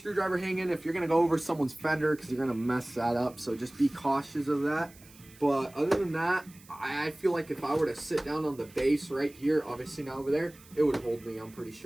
hanging if you're gonna go over someone's fender because you're gonna mess that up. So just be cautious of that. But other than that, I feel like if I were to sit down on the base right here, obviously not over there, it would hold me, I'm pretty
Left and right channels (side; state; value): right; noise; hiss, 24 dB below the sound